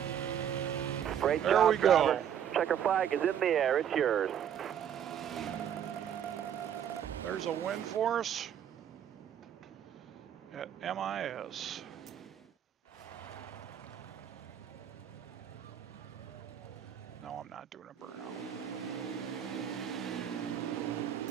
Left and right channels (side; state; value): left; quieter; 9.3 dB